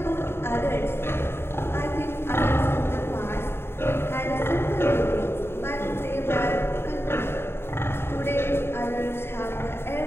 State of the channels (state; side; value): late; right; 0.11 ms